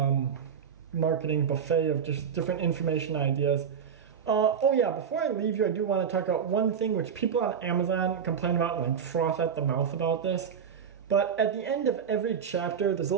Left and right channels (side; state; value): left; quieter; 7.3 dB